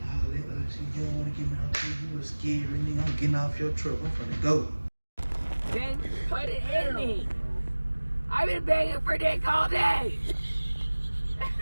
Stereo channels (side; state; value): both; inverted; correlation -1.00